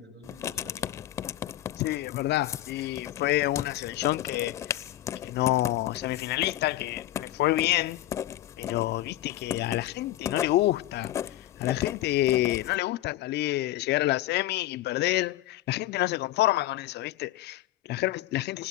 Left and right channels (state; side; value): quieter; right; 14.8 dB